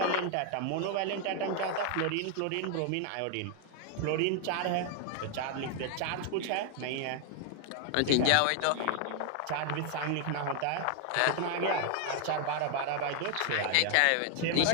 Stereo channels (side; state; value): both; different; correlation 0.00